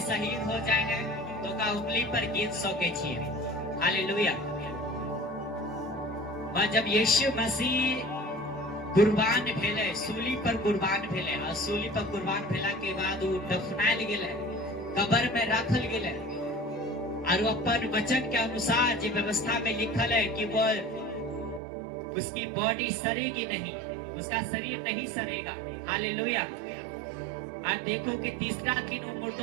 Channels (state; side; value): drops out; left; at 21.6 s